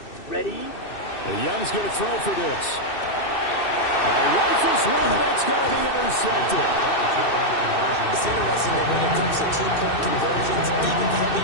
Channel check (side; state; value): right; late; 2.6 ms